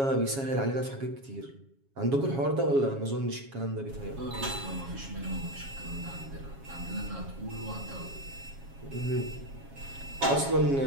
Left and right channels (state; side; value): late; left; 7.3 ms